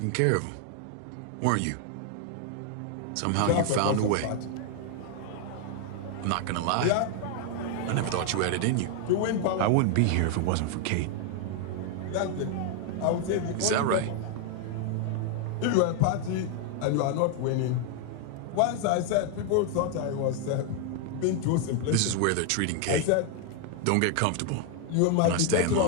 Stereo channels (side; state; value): both; different; correlation 0.00